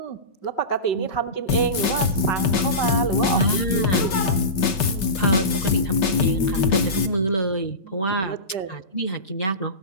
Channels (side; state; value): right; late; 5.3 ms